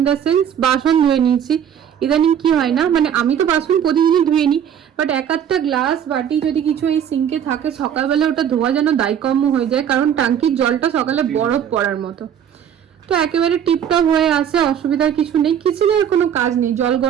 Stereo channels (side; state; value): left; quieter; 8.9 dB